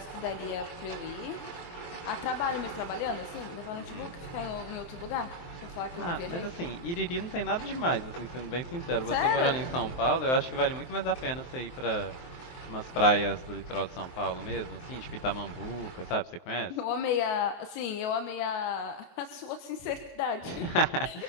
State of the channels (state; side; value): late; right; 23 ms